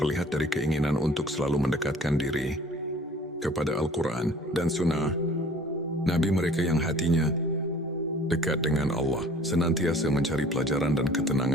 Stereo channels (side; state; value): both; normal; correlation 0.50